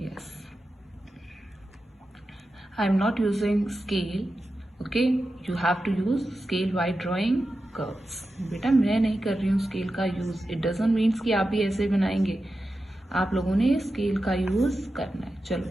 Yes, I am not using scale, okay, you have to use scale while drawing curves. बेटा मैं नहीं कर रही हूँ स्केल का यूज, इट डजंट मीन्स कि आप भी ऐसे बनाएंगे, आप लोगों ने स्केल का यूज करना है।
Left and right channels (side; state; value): both; normal; correlation 0.91